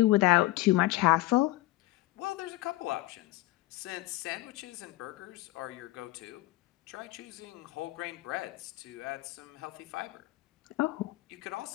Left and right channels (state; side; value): quieter; right; 18.0 dB